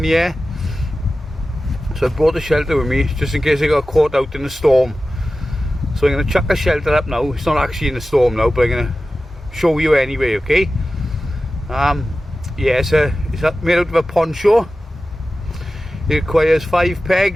the air, so I brought a shelter with me just in case I got caught out in a storm. So I'm going to chuck a shelter up now. It's not actually in a storm now, but I'm going to show you anyway, okay? Yeah, it's made out of a poncho. It requires 5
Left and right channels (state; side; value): normal; both; correlation 0.95